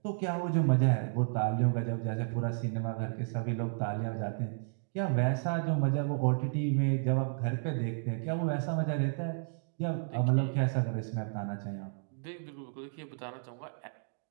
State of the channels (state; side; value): silent; left; digital silence